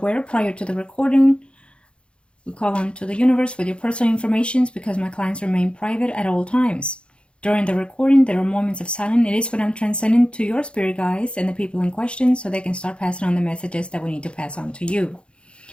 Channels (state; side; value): late; right; 0.057 ms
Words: prior to the recording, we call on to the universe with your personal information because my clients remain private at all times. During the recording, there are moments of silence. It is when I'm transcending to your spirit guides and the people in question so they can start passing on the messages that we need to pass on to you.